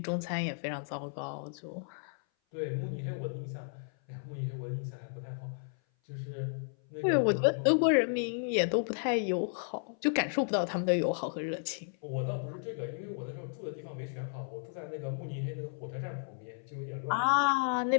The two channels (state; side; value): silent; right; 55 dB below the other